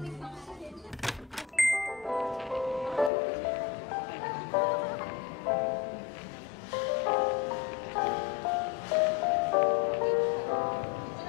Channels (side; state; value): right; drops out; at 3.1 s